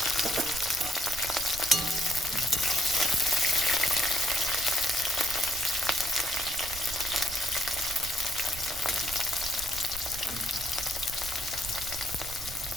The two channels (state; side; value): noise; right; rumble, 12 dB below the sound